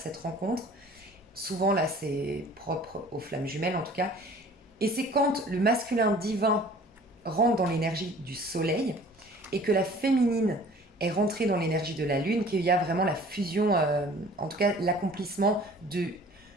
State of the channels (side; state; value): both; normal; correlation 0.49